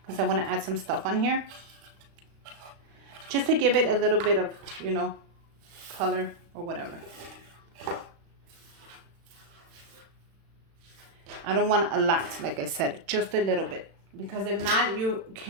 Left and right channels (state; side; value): late; left; 36 ms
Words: because I wanna add some stuff on here. Just to give it a little bit of, you know, color or whatever. I don't want a lot, like I said, just a little bit. Because if not, you